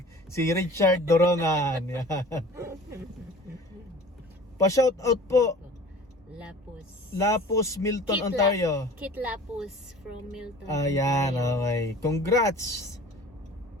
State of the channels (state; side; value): normal; both; correlation 0.44